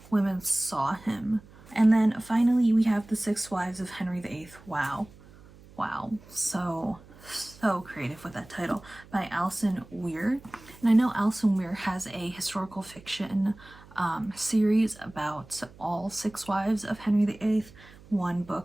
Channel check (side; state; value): right; noise; hum, 22 dB below the sound